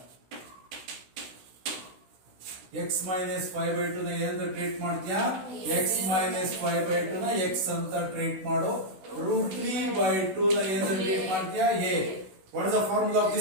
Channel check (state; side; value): late; left; 16 ms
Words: x minus 5/2 ನ ಏನಂತ treat ಮಾಡ್ತೀಯಾ? x minus 5/2 ನ x ಅಂತ treat ಮಾಡು. √3/2 ನ ಏನಂತ ಟ್ರೀಟ್ ಮಾಡ್ತೀಯಾ? a. What is the formula of